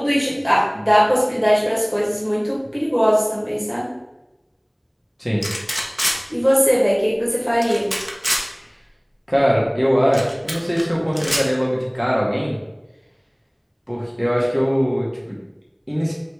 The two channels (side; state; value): both; identical; correlation 1.00